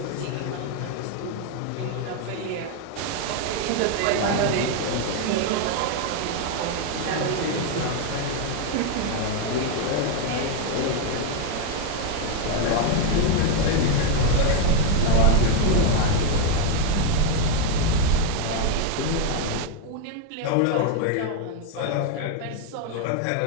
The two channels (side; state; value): both; different; correlation 0.01